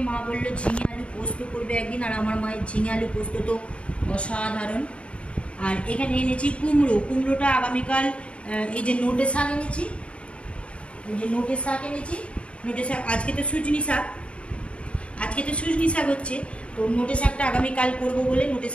মা বললো ঝিঙে আলু পোস্ত করবে একদিন, আর আমার মায়ের ঝিঙে আলু পোস্ত তো অসাধারণ। আর এখানে এনেছি কুমড়ো, কুমড়োটা আগামীকাল। এই যে নোটে শাক এনেছি, এই যে নোটে শাক এনেছি, নোটে শাক। আজকে তো সুজনি শাক, আজকে তো সুজনি শাক হচ্ছে, তো নোটে শাকটা আগামীকাল করবো বলে নোটে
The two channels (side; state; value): right; late; 0.060 ms